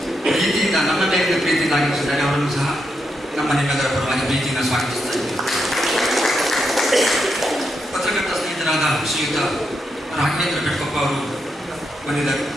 ಪ್ರೀತಿಯಿಂದ ನಮ್ಮ ಮೇಲಿನ ಪ್ರೀತಿಯಿಂದ ಆಗಮಿಸಿದ್ದಾರೆ. ಅವರನ್ನು ಸಹ ನಮ್ಮ ನಿಮ್ಮೆಲ್ಲರ ಪರವಾಗಿ ಪ್ರೀತಿಯಿಂದ ಸ್ವಾಗತಿಸ್ತಾ ಇದ್ದೇವೆ. ಪತ್ರಕರ್ತ ಸ್ನೇಹಿತರಾದ ಶ್ರೀಯುತ ರಾಘವೇಂದ್ರ ಕಟ್ಕೊಪ್ಪ ಅವರು ಬಂದಿದ್ದಾರೆ.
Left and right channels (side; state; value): both; normal; correlation 0.83